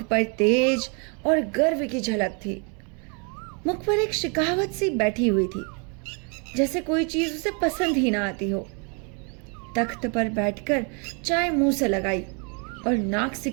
पर तेज और गर्व की झलक थी। मुख पर एक शिकावत सी बैठी हुई थी, जैसे कोई चीज उसे पसंद ही ना आती हो। तख्त पर बैठकर चाय मुंह से लगाई और नाक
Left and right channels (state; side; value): quieter; left; 36.5 dB